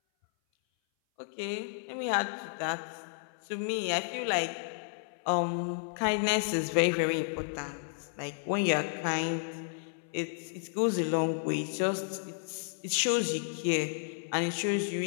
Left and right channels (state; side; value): silent; right; 56 dB below the other